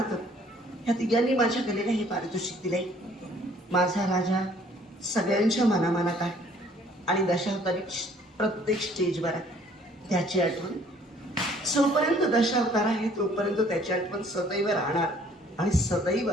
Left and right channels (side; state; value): both; normal; correlation 0.58